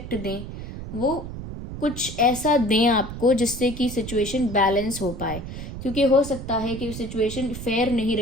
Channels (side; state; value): right; noise; rumble, 9 dB below the sound